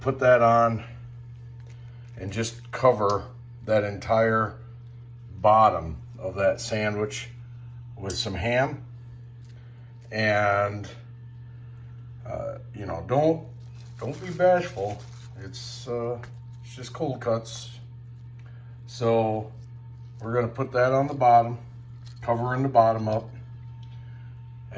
that on and just cover that entire bottom of that sandwich with some ham. And you know, don't be bashful. It's just cold cuts. So we're gonna put that on the bottom, covering the bottom up.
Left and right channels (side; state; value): both; identical; correlation 1.00